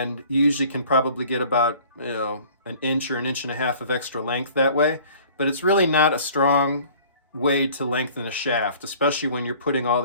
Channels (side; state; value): both; inverted; correlation -0.50